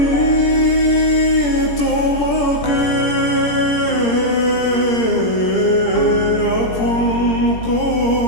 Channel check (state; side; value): late; right; 17 ms